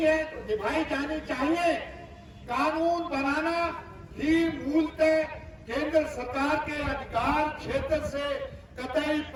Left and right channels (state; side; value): identical; both; correlation 1.00